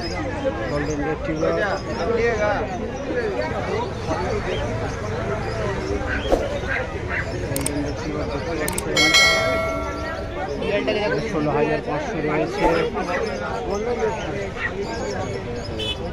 গোল্ডেন রিট্রিভার 16,500 রয়েছে।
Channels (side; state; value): both; identical; correlation 1.00